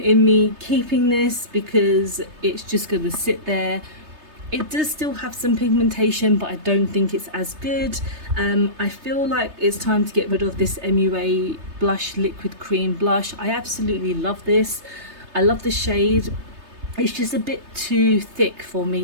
in me keeping this because it's just going to sit there. It does still have some pigmentation, but I don't think it's as good. I feel like it's time to get rid of this MUA blush liquid cream blush. I absolutely love this. I love the shade. It's just a bit too thick for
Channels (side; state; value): left; late; 3.3 ms